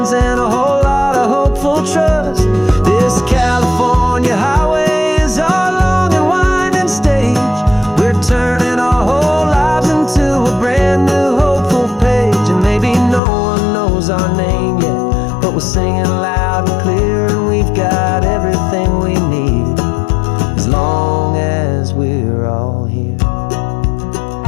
and a whole lot of hopeful trust. This California highway is our long and winding stage. We're turning our whole lives into a brand new hopeful page. And maybe no one knows our name yet, but we're singing loud and clear, and we've got everything we need as long as we're all here.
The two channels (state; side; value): drops out; right; at 13.2 s